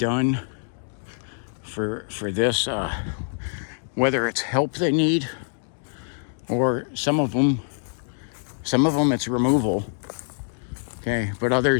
for this, whether it's help they need, or some of them it's removal. Okay, but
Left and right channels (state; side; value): silent; right; 62 dB below the other